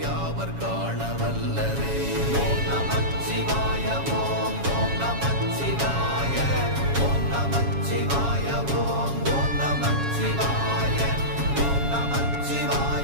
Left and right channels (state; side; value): late; left; 7.2 ms